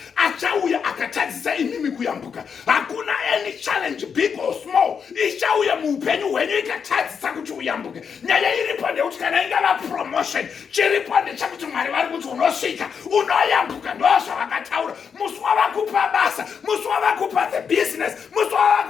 achauya akatadzisa imimi kuyambuka. Hakuna any challenge big or small ichauya muupenyu hwenyu ikatadzisa kuti uyambuke. Nyaya iripo ndekuti kana ingava promotion, chiripo ndechekuti Mwari vari kuti unosvika, unoyambuka. Ndozvavakataura. Musi wavakupa basa, musi wavakupa the business, musi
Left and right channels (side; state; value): right; quieter; 6.6 dB